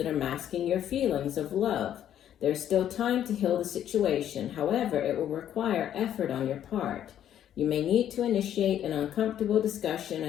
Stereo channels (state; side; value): quieter; right; 10.6 dB